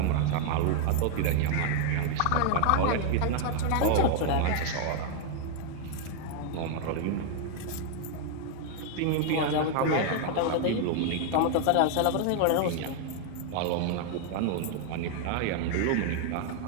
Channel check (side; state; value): both; different; correlation 0.00